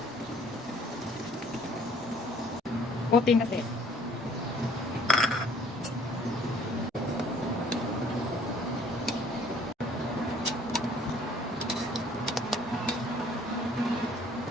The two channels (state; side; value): normal; both; correlation 0.57